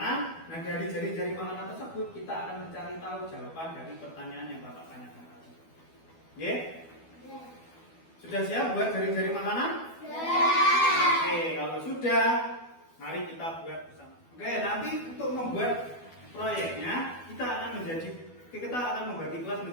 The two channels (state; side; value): late; right; 12 ms